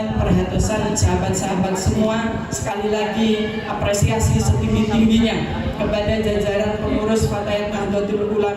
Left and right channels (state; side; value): identical; both; correlation 1.00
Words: perhatosan sahabat-sahabat semua. Sekali lagi apresiasi setinggi-tingginya kepada jajaran pengurus Fatayat Nahdlatul